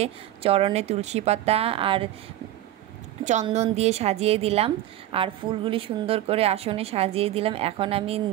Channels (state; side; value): quieter; left; 13.6 dB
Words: চরণে তুলসী পাতা আর চন্দন দিয়ে সাজিয়ে দিলাম, আর ফুলগুলি সুন্দর করে আসনে সাজিয়ে দিলাম। এখন আমি